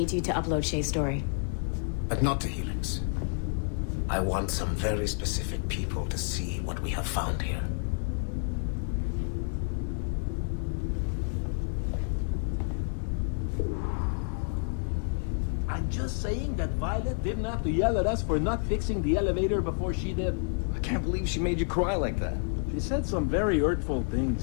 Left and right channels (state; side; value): silent; right; 58 dB below the other